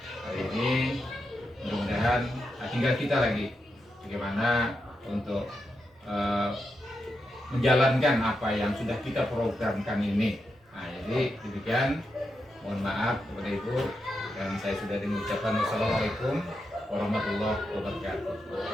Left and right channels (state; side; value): normal; both; correlation 0.86